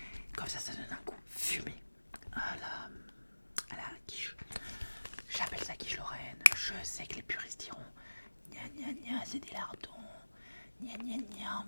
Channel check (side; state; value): both; inverted; correlation -1.00